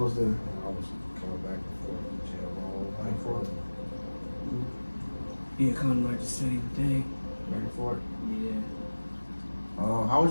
did? I was coming back and forth to jail my whole Back and forth. life. Yeah, kind of like the same thing. Back and forth. Yeah. How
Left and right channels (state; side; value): inverted; both; correlation -1.00